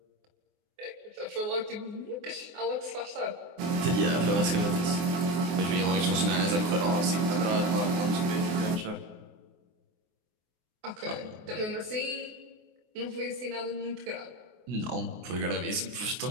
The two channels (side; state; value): left; late; 24 ms